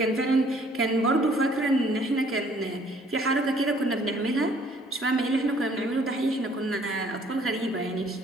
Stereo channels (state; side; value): normal; both; correlation 0.60